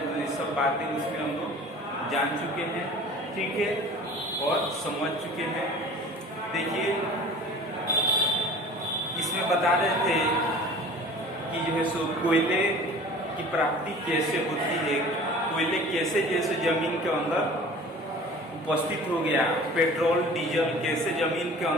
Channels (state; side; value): normal; both; correlation 0.43